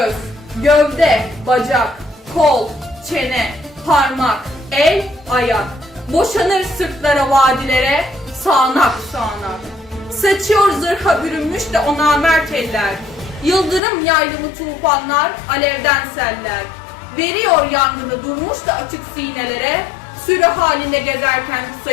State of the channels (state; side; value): drops out; right; at 13.8 s